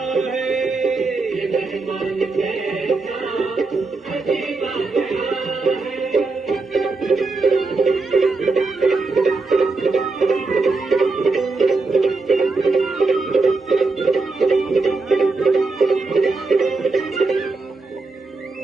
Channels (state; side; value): quieter; left; 3.8 dB